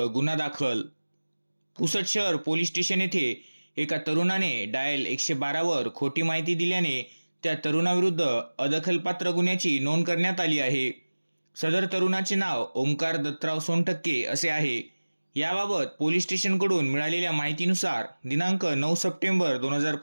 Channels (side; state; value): both; inverted; correlation -1.00